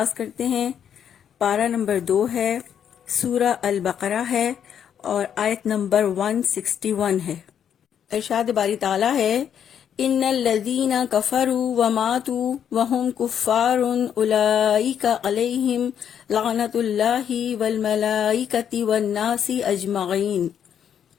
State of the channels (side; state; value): right; quieter; 8.7 dB